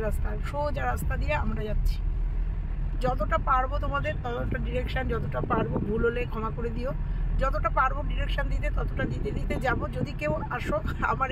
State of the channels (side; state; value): both; identical; correlation 1.00